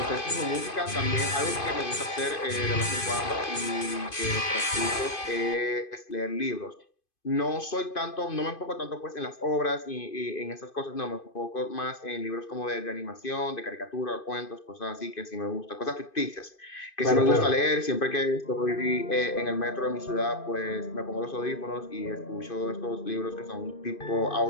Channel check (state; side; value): late; right; 2.5 ms